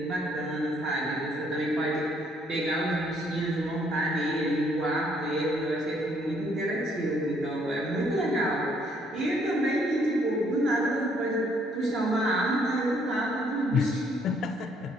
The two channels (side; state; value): both; normal; correlation 0.67